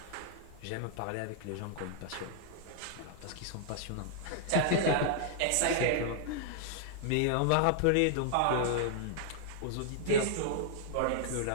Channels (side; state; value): both; different; correlation -0.01